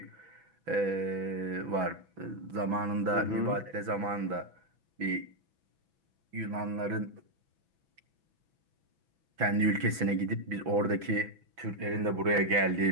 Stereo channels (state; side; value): late; left; 6.1 ms